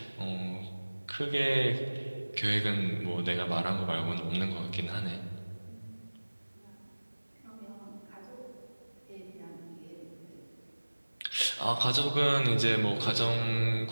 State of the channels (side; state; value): both; inverted; correlation -1.00